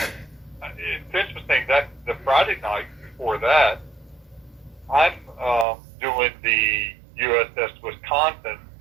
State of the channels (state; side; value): drops out; left; at 5.7 s